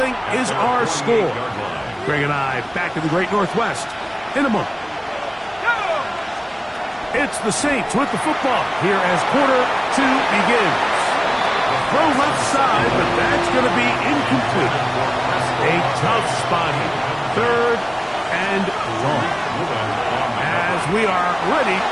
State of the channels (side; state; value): both; identical; correlation 1.00